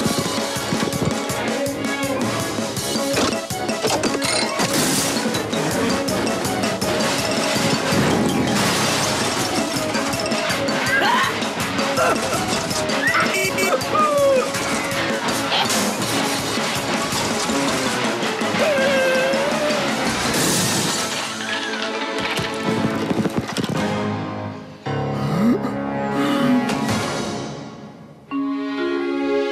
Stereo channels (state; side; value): identical; both; correlation 1.00